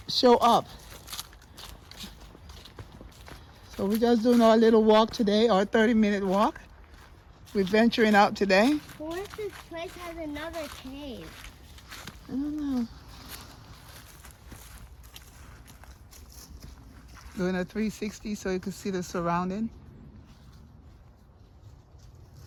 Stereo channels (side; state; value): both; identical; correlation 1.00